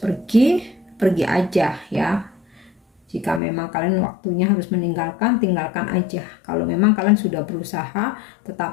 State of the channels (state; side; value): drops out; right; at 3.4 s